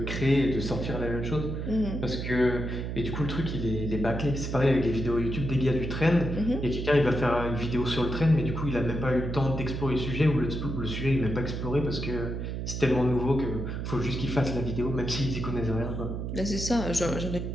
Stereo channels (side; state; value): right; noise; hum, 4 dB below the sound